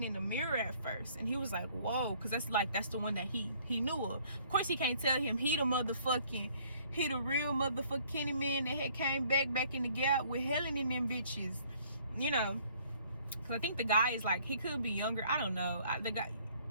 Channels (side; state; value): both; inverted; correlation -0.60